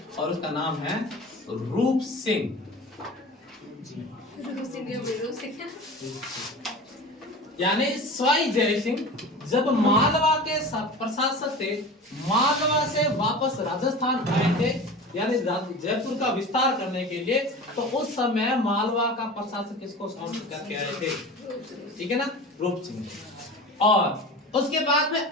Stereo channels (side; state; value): both; normal; correlation 0.35